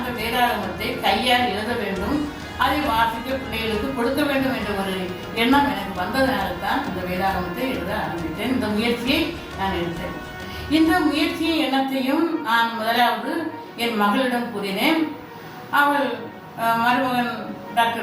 வேதாகமத்தை கையால் எழுத வேண்டும், அதை வாசிக்க பிள்ளைகளுக்கு கொடுக்க வேண்டும் என்ற ஒரு எண்ணம் எனக்கு வந்ததனால தான் இந்த வேதாகமத்தை எழுத ஆரம்பித்தேன். இந்த முயற்சியை நான் எடுத்தேன். இந்த முயற்சியின் எண்ணத்தையும் நான் முதலாவது என் மகளிடம் கூறினேன். அவள் மருமகன்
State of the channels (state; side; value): identical; both; correlation 1.00